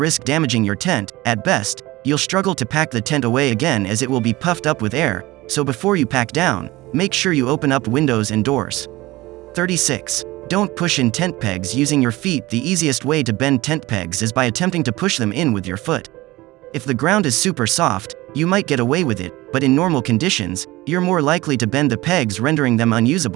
damaging your tent. At best, you'll struggle to pack the tent away again as it will be puffed up with air, so before you pack down, make sure you open up windows and doors. 36. Don't push in tent pegs using your feet. The easiest way to bend tent pegs is by attempting to push them in with your foot. If the ground is super soft, you might get away with it, but in normal conditions, you're more likely to bend the pegs, rendering them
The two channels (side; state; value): left; quieter; 19.5 dB